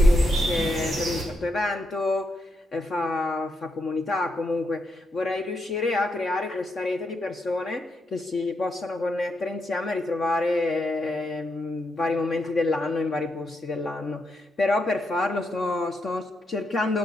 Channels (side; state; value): both; normal; correlation 0.82